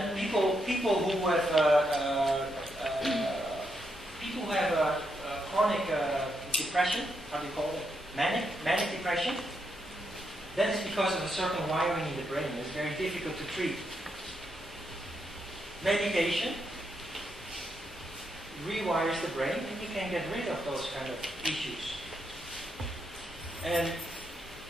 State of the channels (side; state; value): both; normal; correlation 0.80